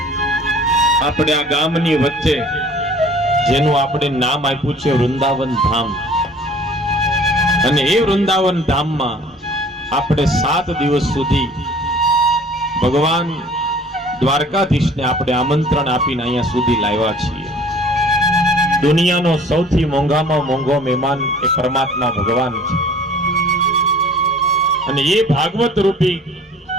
આપણે આ ગામની વચ્ચે જેનું આપણે નામ આપ્યું છે વૃંદાવન ધામ, અને એ વૃંદાવન ધામમાં આપણે 7 દિવસ સુધી ભગવાન દ્વારકાધીશને આપણે આમંત્રણ આપીને અહીંયા સુધી લાવ્યા છીએ. દુનિયાનો સૌથી મોંઘામાં મોંઘો મહેમાન એ પરમાત્મા ભગવાન છે, અને એ ભાગવત રૂપી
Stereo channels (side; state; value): both; normal; correlation 0.50